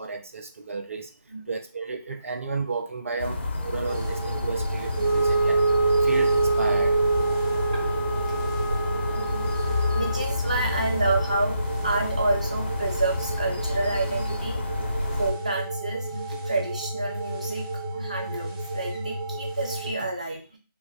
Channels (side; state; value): both; inverted; correlation -0.79